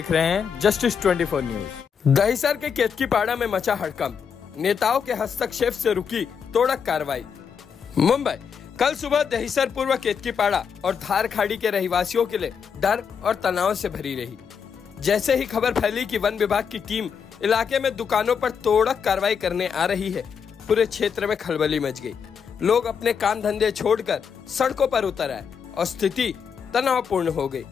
रहे हैं जस्टिस 24 न्यूज। दहिसर के केतकीपाड़ा में मचा हड़कंप, नेताओं के हस्तक्षेप से रुकी तोड़क कार्रवाई। मुंबई, कल सुबह दहिसर पूर्व केतकीपाड़ा और धार खाड़ी के रहवासियों के लिए डर और तनाव से भरी रही। जैसे ही खबर फैली कि वन विभाग की टीम इलाके में दुकानों पर तोड़क कार्रवाई करने आ रही है, पूरे क्षेत्र में खलबली मच गई। लोग अपने काम धंधे छोड़कर सड़कों पर उतर आए और स्थिति तनावपूर्ण हो गई।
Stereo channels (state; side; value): quieter; right; 6.8 dB